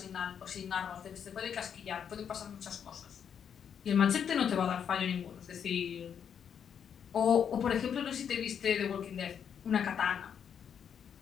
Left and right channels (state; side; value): quieter; right; 7.9 dB